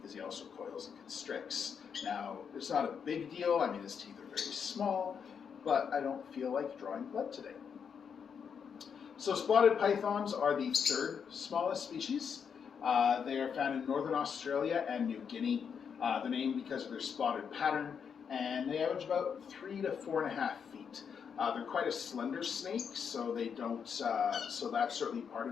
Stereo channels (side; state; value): right; quieter; 6.9 dB